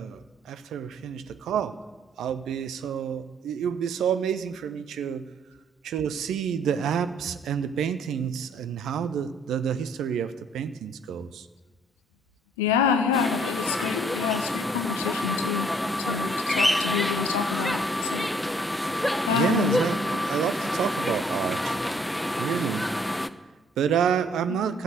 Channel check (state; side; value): normal; both; correlation 0.62